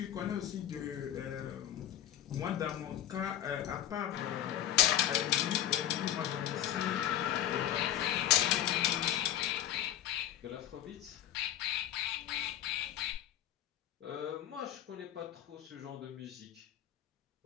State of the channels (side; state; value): right; quieter; 11.6 dB